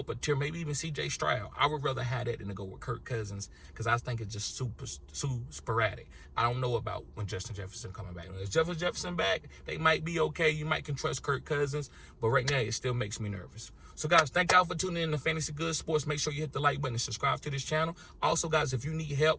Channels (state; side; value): identical; both; correlation 1.00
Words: a tier, maybe even C.J. Stroud, I would rather have that than to go with Kirk Cousins because I think it's just super sporadic. I don't know about when Justin Jefferson coming back. When it's Justin Jefferson back, they might be okay. You might can trust Kirk Cousins, but right now it still makes me nervous. So, guys, thank y'all for tuning in to Fantasy Good Sports. Make sure you hit the like button and subscribe to this channel. Also, guys, if you need